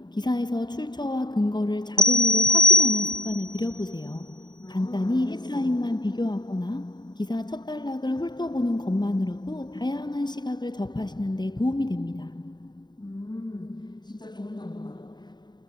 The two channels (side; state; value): right; late; 0.21 ms